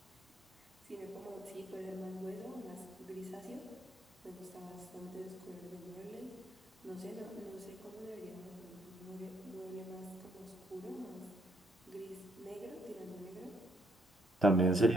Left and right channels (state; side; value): normal; both; correlation 0.70